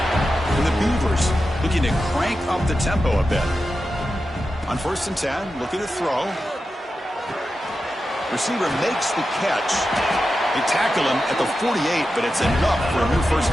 And the Beavers looking to crank up the tempo a bit. On 1st and 10, looking to throw. Receiver makes the catch. They tackle him at the 48, but it's enough for a new first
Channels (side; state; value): both; normal; correlation 0.91